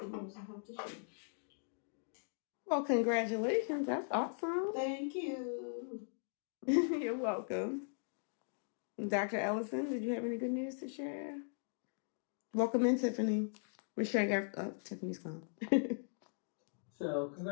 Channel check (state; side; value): silent; right; digital silence